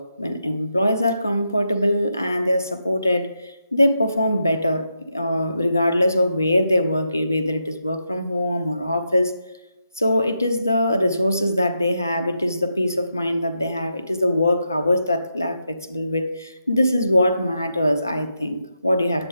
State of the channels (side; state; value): both; inverted; correlation -0.84